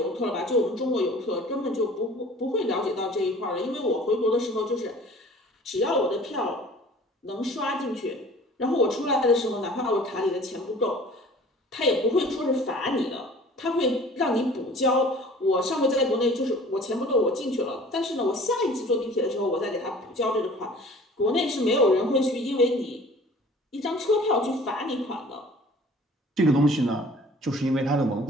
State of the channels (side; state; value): both; normal; correlation 0.48